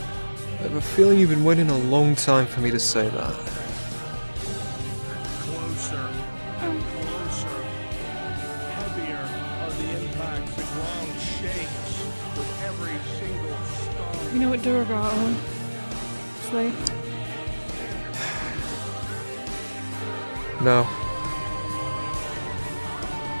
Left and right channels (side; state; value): both; inverted; correlation -1.00